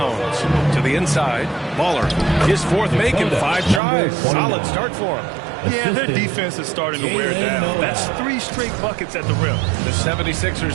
To the inside, Baller. His fourth make in 5 tries. Solid start for him. Yeah, their defense is starting to wear down. That's 3 straight buckets at the rim. The 76ers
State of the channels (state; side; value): drops out; left; at 3.8 s